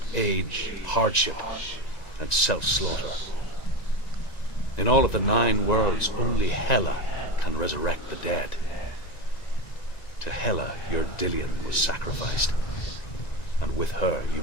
age, hardship, and self-slaughter. In all of the 9 worlds, only Hela can resurrect the dead. To Hela, your Dillion was sacrificed, and with her you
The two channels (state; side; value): late; right; 1.9 ms